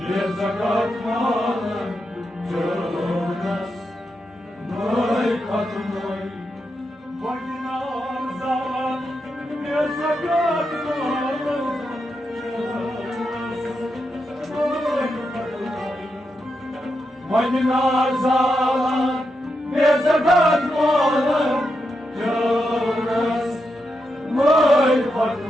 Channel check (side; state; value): both; normal; correlation 0.85